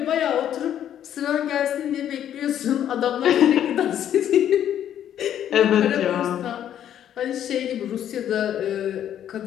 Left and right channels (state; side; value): quieter; right; 10.4 dB